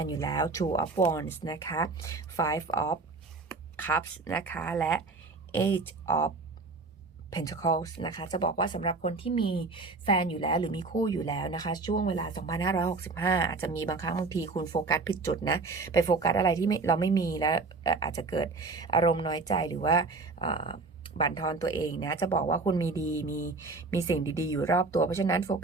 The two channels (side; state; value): left; quieter; 3.8 dB